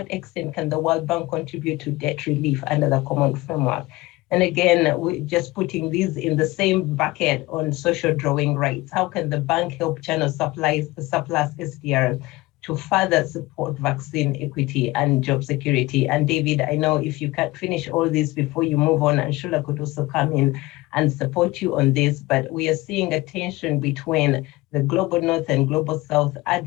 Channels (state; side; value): quieter; right; 20.1 dB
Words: extent can the World Bank contribute to debt relief under the common framework? And again, we're just putting these in the same bucket on social drawing rights. How can the bank help channel surplus SDRs to further support vaccine equity and job security? And David, I know if you can finish all this before you move on, and Shula could also come in and support you on this, but we are seeing a tension between the Global North and Global South